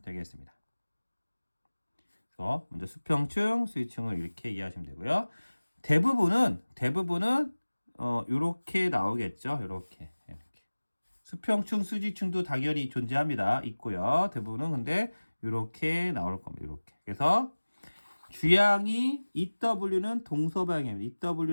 되겠습니다. 그래서 먼저 수평층, 수직층을 이렇게 이해하시면 되고요. 대부분은 이렇게 나오겠죠. 이렇게. 수평층, 수직층도 당연히 존재합니다. 있고요. 대부분은 근데 이렇게 나올 겁니다. 이렇게. 그래서 주양이 EW는 동서방향입니다.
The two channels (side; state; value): both; inverted; correlation -1.00